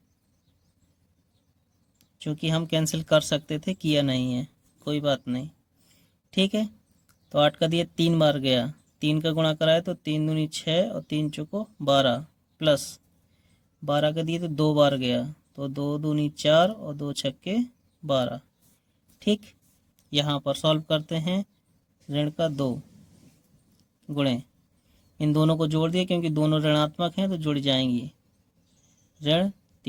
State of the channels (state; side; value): identical; both; correlation 1.00